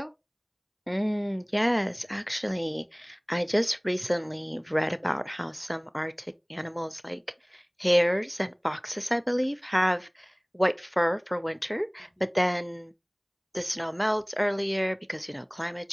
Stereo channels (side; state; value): both; identical; correlation 1.00